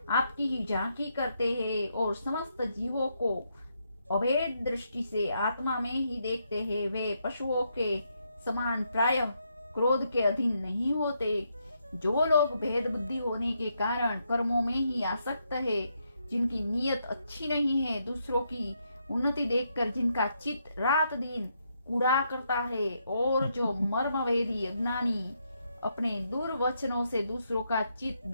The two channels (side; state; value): both; inverted; correlation -0.78